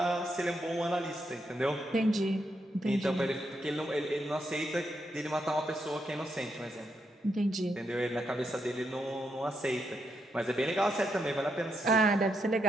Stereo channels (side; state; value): both; normal; correlation 0.80